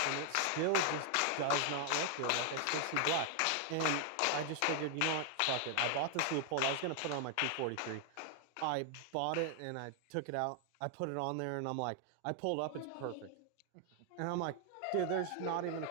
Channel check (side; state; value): both; different; correlation 0.00